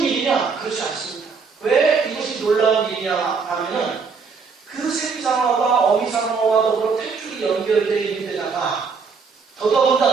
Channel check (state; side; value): quieter; left; 5.2 dB